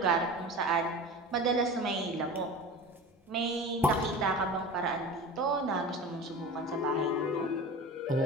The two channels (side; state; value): both; normal; correlation 0.34